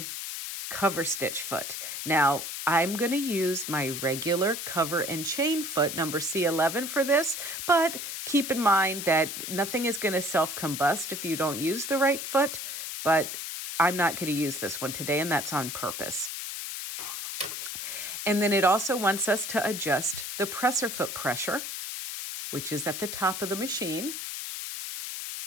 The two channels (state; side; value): noise; left; hiss, 6 dB below the sound